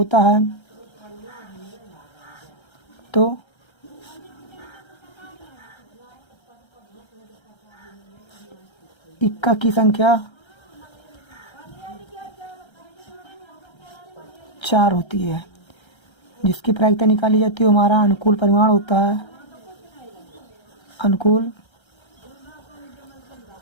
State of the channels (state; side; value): late; right; 1.3 ms